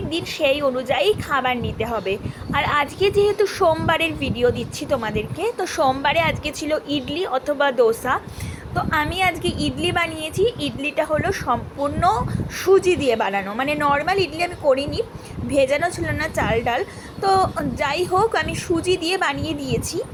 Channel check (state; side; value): identical; both; correlation 1.00